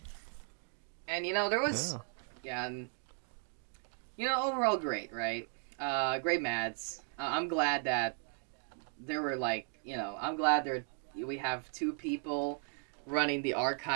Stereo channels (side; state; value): left; silent; 54 dB below the other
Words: And there was and overall great, right? Great MADs. I'm glad that there were I'm glad we have 2 people running the